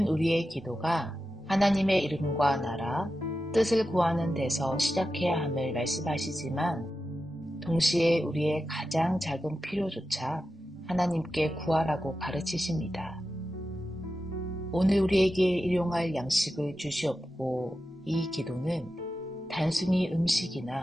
우리의 기도가 하나님의 이름과 나라, 뜻을 구하는 데서 시작해야 함을 말씀하시지만 동시에 우리의 가장 작은 필요조차 하나님께 구하라고 가르치십니다. 오늘 우리에게 일용할 양식을 주시옵고, 이 기도는 단순히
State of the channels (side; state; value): both; normal; correlation 0.91